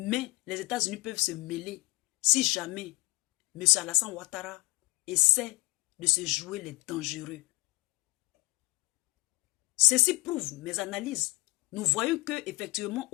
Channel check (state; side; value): quieter; right; 22.7 dB